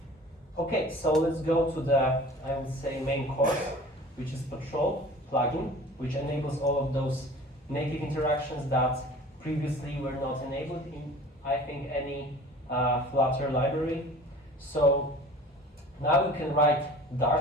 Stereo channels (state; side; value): normal; both; correlation 0.43